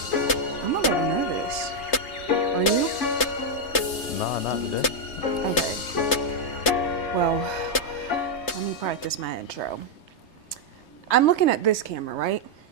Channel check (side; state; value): right; late; 3.3 ms